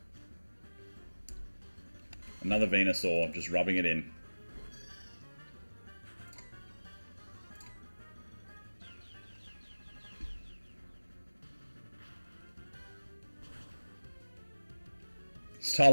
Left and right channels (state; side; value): inverted; both; correlation -1.00